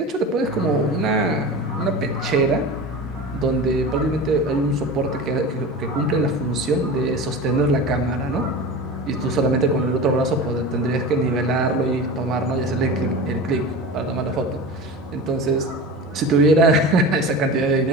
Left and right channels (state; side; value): normal; both; correlation 0.31